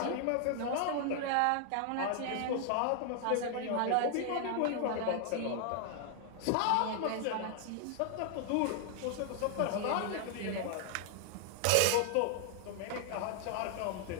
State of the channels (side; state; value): both; different; correlation 0.00